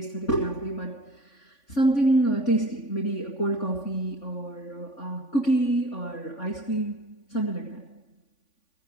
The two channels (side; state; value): right; late; 3.5 ms